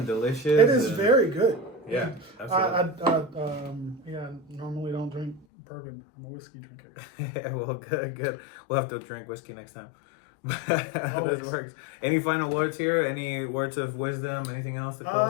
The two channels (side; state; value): right; drops out; at 5.5 s